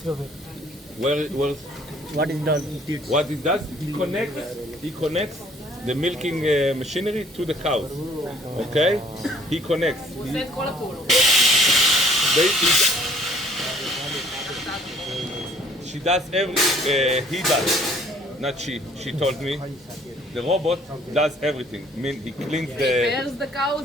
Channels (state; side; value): normal; both; correlation 0.59